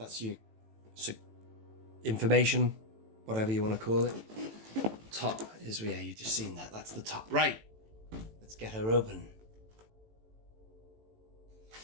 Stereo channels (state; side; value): late; left; 18 ms